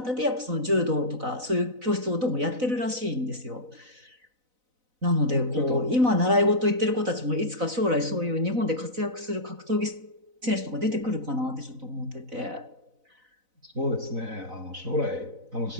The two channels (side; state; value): left; late; 4.0 ms